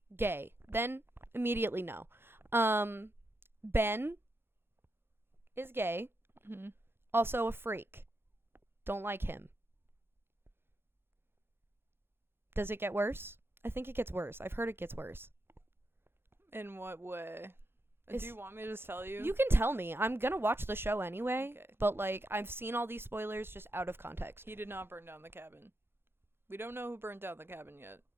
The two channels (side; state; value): left; late; 0.11 ms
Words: gay. Then immediately no. Ben is gay. Mm-hmm. Also a freak. Don't like him. Does it get worse? I think it gets worse. I've heard it gets worse. In what way? Do you want me to just tell you? You can tell me. I'm going to watch the show anyway. Okay. But, like, I've seen all these spoilers just out of context. He did not burn down the cabin. We don't know who burned down the cabin yet.